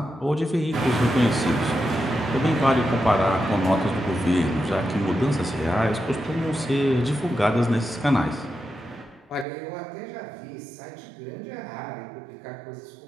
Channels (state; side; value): drops out; left; at 9.5 s